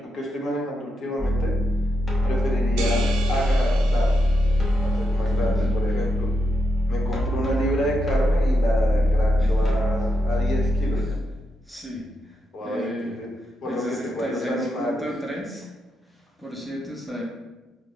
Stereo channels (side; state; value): both; normal; correlation 0.83